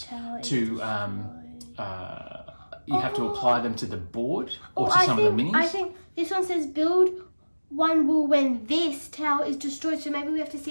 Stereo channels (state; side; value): inverted; both; correlation -1.00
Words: to, you have to apply them to the board or to some of the minis. I think this one says build one wall when this tower is destroyed, so maybe we have to